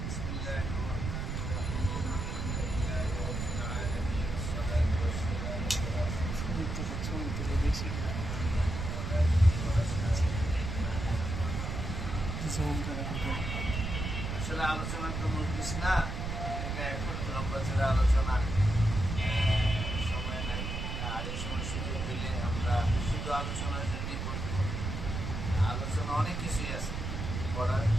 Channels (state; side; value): noise; right; rumble, 3 dB below the sound